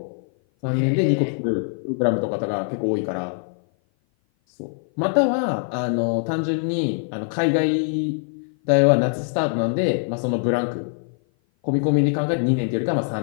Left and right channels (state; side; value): silent; right; 56 dB below the other